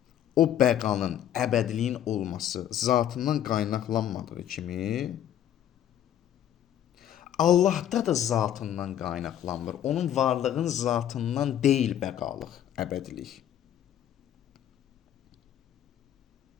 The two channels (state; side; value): quieter; right; 10.8 dB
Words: o bəqanın, əbədiliyin olması zatından qaynaqlanmadığı kimi, Allahda da zatından qaynaqlanmır. Onun varlığın zatından deyil bəqalıq, əbədilik.